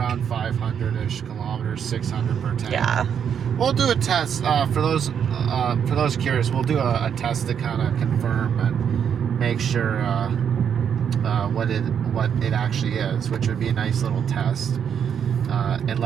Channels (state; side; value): quieter; left; 8.0 dB